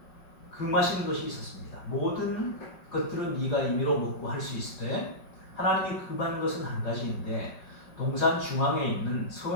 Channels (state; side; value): late; right; 5.4 ms